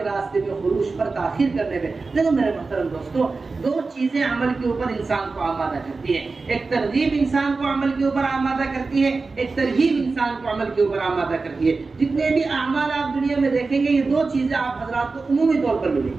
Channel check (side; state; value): left; quieter; 4.0 dB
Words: راستے میں خروج پر تاخیر کرنے میں. دیکھو میرے محترم دوستو, دو چیزیں عمل کے اوپر انسان کو آمادہ کرتی ہیں. ایک ترغیب انسان کو عمل کے اوپر آمادہ کرتی ہے, ایک ترغیب انسان کو عمل کے اوپر آمادہ کرتی ہے. جتنے بھی اعمال آپ دنیا میں دیکھیں گے یہ دو چیزیں آپ حضرات کو عمومی طور پر ملیں